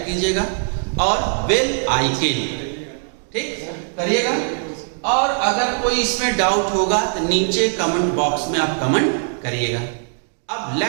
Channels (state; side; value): silent; left; digital silence